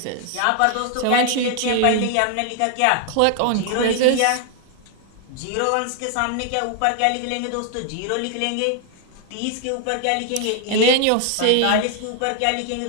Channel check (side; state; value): both; different; correlation 0.00